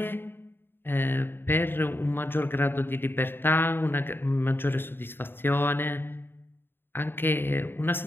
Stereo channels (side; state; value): right; late; 0.10 ms